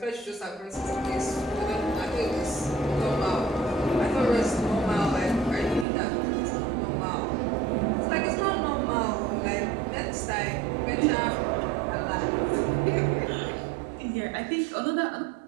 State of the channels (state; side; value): drops out; left; at 5.9 s